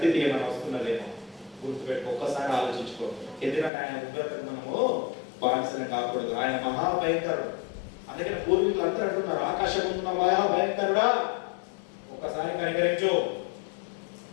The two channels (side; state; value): right; drops out; at 3.7 s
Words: ఏమైనా వస్తున్నదేమో గుర్తుపెట్టుకో, ఒక్కసారి ఆలోచించుకో. ఎందుకంటే ఆయన ఉగ్రతకు మనము బానిసని కాకూడదు. ఆయన మహాభయంకరుడు. అందుకని పూర్వీకులు అందరూ అంటున్నారు, ఆకాశం ఉన్న మహాభయంకరుడా, ఒక్కసారి కనికరించు,